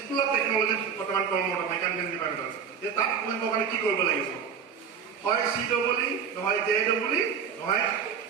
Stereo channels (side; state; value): left; quieter; 7.0 dB